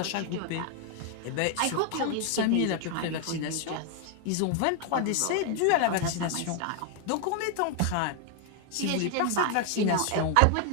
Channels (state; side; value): different; both; correlation 0.00